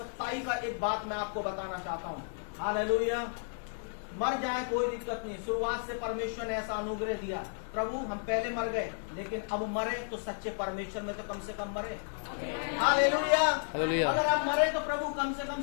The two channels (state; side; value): silent; right; 56 dB below the other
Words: का एक बात मैं आपको बताना चाहता हूँ। हालेलुया। मर जाए कोई दिक्कत नहीं, शुरुआत से परमेश्वर ने ऐसा अनुग्रह दिया। प्रभु हम पहले मर गए लेकिन अब मरे तो सच्चे परमेश्वर में तो कम से कम मरे। हालेलुया। हालेलुया। अगर आप मरे तो प्रभु कम से कम